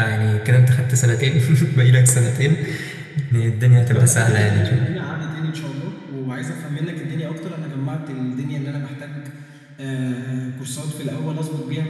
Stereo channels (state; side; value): identical; both; correlation 1.00